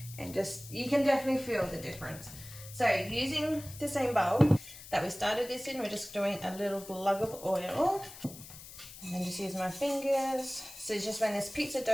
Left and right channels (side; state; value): left; noise; hiss, 15 dB below the sound